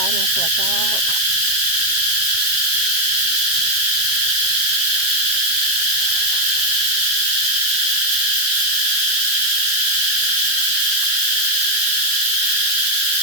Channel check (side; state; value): left; late; 7.0 ms